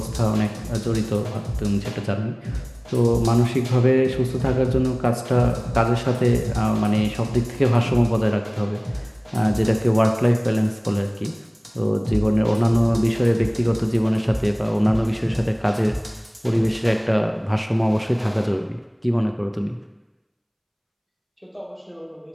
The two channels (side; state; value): both; identical; correlation 1.00